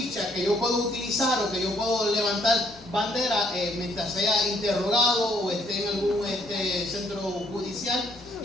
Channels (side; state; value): both; normal; correlation 0.67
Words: que yo puedo utilizar o que yo puedo levantar bandera mientras sea interrogado o esté en algún centro judicial,